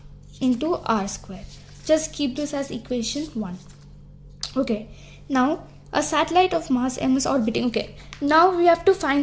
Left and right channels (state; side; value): identical; both; correlation 1.00